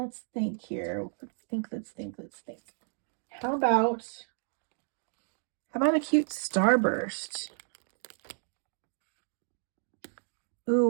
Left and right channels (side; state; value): left; silent; 56 dB below the other